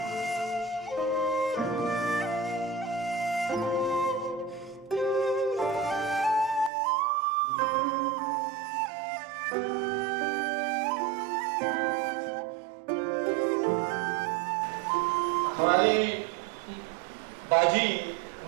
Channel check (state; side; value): drops out; left; at 6.7 s